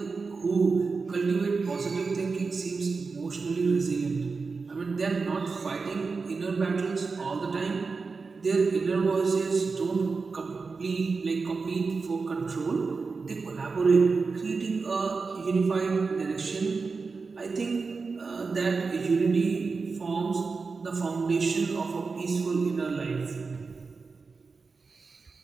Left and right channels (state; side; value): quieter; left; 4.5 dB